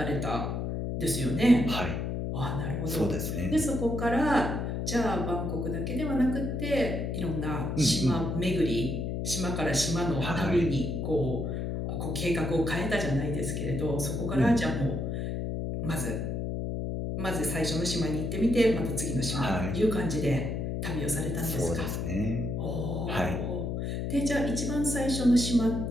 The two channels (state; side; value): noise; left; hum, 2 dB below the sound